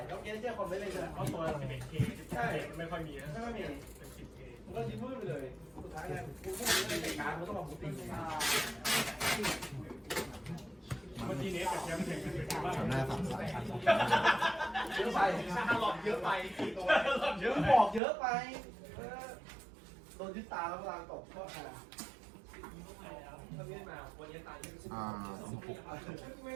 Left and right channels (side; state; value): left; drops out; at 18.0 s